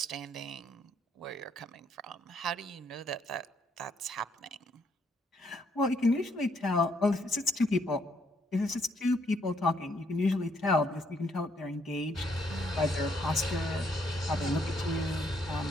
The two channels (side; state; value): both; normal; correlation 0.71